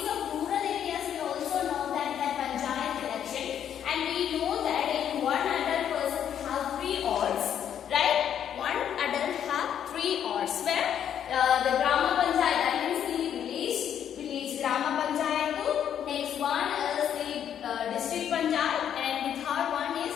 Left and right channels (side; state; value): right; quieter; 9.4 dB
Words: of rural areas we also know that panchayat election, and we know that in one adult person have 3 wards, right? One adult have 3 wards where the Grama Panchayat, that means the village Grama Panchayat, next one is the district Panchayat, and the third one is